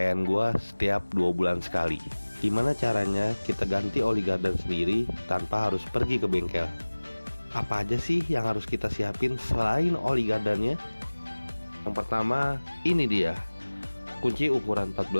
gue setiap 2 bulan sekali. Gimana caranya kita ganti oli gardan sendiri tanpa harus pergi ke bengkel? Apa aja sih yang harus kita siapin selain oli gardannya? Yang pertama, ini dia kunci ukuran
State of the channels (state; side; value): inverted; both; correlation -1.00